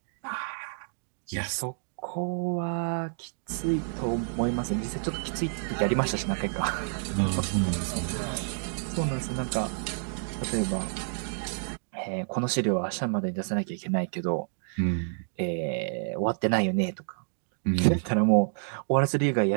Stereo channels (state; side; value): silent; left; digital silence